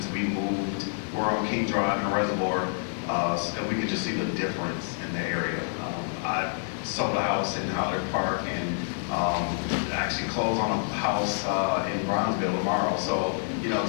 we moved. We're on King Drive and Reservoir, and we could just see the difference in the area. I sold a house in Howard Park and actually close on a house in Bronzeville tomorrow. So, you know,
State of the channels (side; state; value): right; silent; digital silence